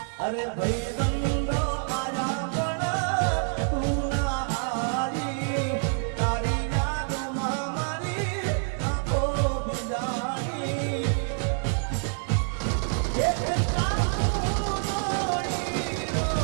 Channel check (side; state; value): left; silent; 58 dB below the other